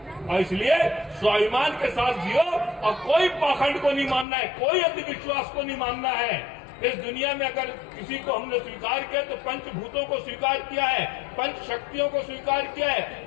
और इसलिए स्वाभिमान के साथ जियो और कोई पाखंड को नहीं मानना है, कोई अंधविश्वास को नहीं मानना है। इस दुनिया में अगर किसी को हमने स्वीकार किया तो पंचभूतों को स्वीकार किया है, पंच शक्तियों को स्वीकार किया है।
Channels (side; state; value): right; drops out; at 4.2 s